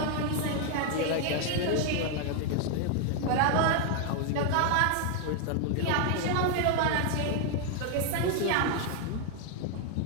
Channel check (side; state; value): both; different; correlation 0.00